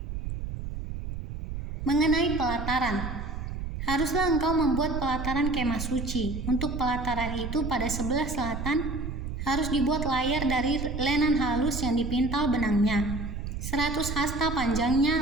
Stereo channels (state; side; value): noise; right; rumble, 6 dB below the sound